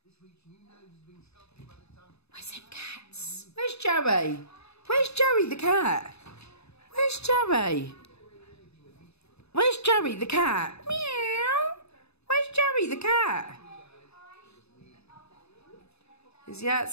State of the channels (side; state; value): right; late; 0.79 ms